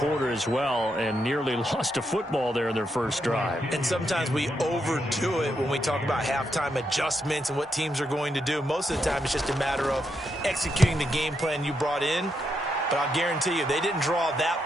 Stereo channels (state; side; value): normal; both; correlation 0.81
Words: as well, and nearly lost a football there in their first drive. And sometimes we overdo it when we talk about halftime adjustments and what teams are going to do. Most of the time, it's just a matter of executing the game plan you brought in. But I'll guarantee you, they didn't draw that